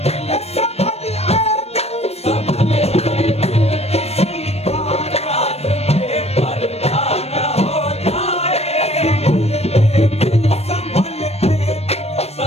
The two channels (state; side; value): late; right; 0.30 ms